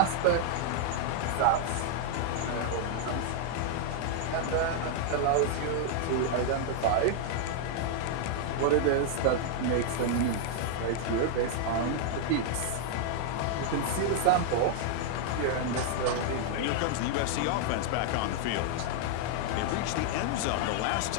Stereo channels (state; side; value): different; both; correlation 0.00